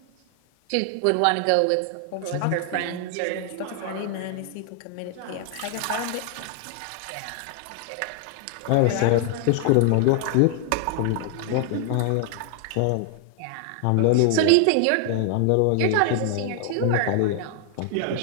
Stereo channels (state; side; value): different; both; correlation 0.00